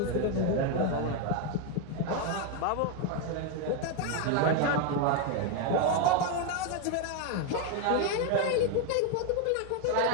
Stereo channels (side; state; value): both; different; correlation 0.01